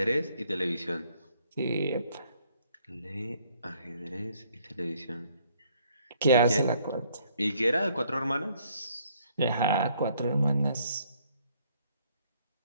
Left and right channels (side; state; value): both; inverted; correlation -0.65